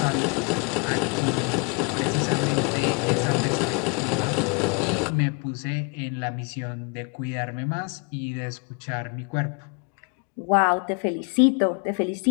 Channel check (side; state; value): right; quieter; 34.6 dB